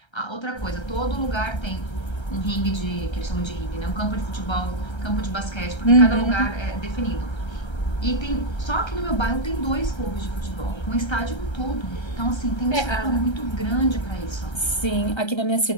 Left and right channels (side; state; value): right; late; 1.3 ms